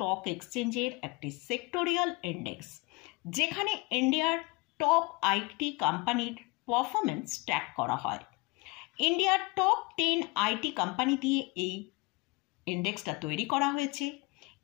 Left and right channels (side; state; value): right; quieter; 25.4 dB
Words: এক্সচেঞ্জের একটি সেক্টোরিয়াল ইন্ডেক্স, যেখানে ইন্ডিয়ার টপ আইটি কোম্পানির পারফরমেন্স ট্র্যাক করা হয়। ইন্ডিয়ার টপ 10 আইটি কোম্পানি দিয়ে এই ইন্ডেক্সটা তৈরি করা হয়েছে।